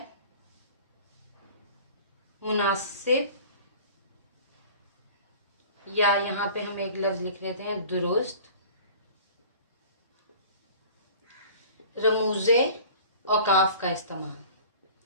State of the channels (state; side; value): inverted; both; correlation -0.44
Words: मुनासिब, या यहाँ पे हम एक लफ्ज लिख लेते हैं दुरुस्त, रमूजे औकाफ का इस्तेमाल।